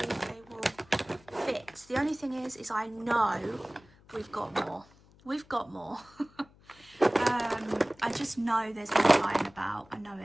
if they will fit. The only thing is I know we've got more. We've got more. I just know there's more lying about. I know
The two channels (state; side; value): noise; left; hum, 27 dB below the sound